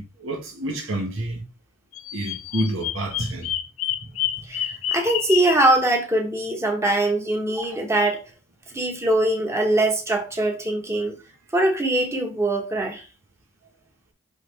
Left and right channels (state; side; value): normal; both; correlation 0.57